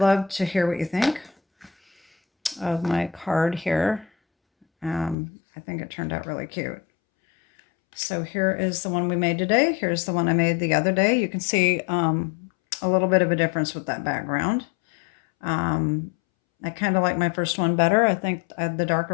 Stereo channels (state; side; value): drops out; right; at 5.2 s